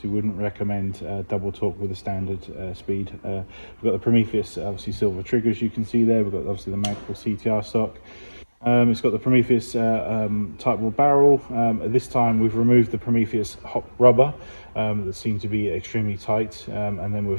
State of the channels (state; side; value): inverted; both; correlation -1.00